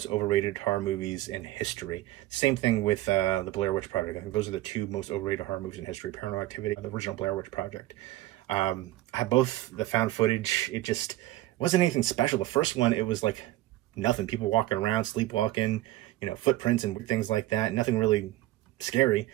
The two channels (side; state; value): left; quieter; 16.1 dB